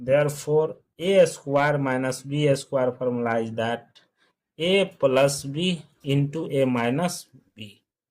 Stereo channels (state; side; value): identical; both; correlation 1.00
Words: a square minus b square formula is that a plus b into a minus b.